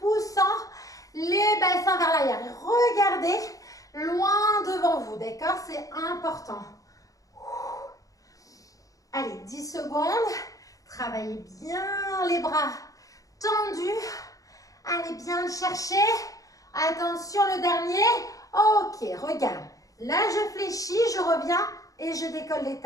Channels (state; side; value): late; right; 0.17 ms